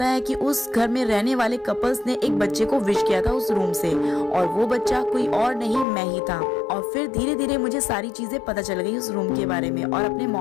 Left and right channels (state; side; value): drops out; right; at 5.9 s